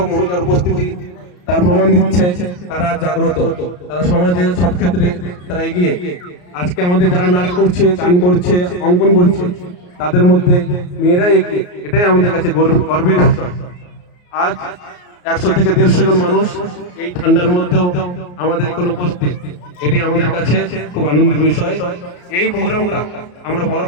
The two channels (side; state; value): right; late; 34 ms